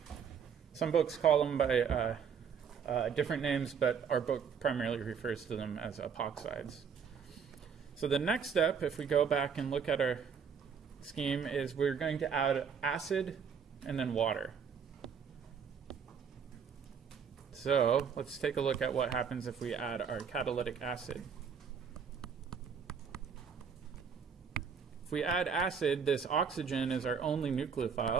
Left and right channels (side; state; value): left; quieter; 6.7 dB